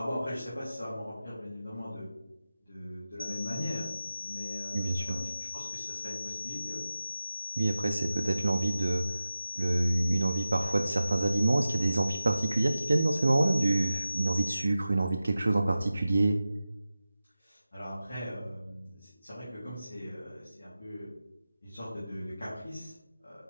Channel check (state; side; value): inverted; both; correlation -0.94